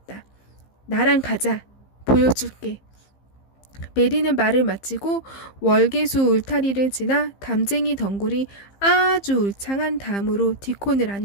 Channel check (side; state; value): right; late; 15 ms